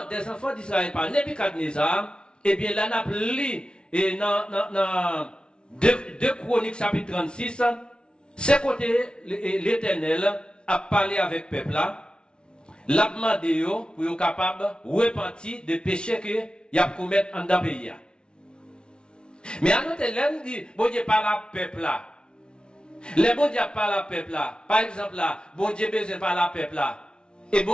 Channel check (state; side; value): late; right; 0.056 ms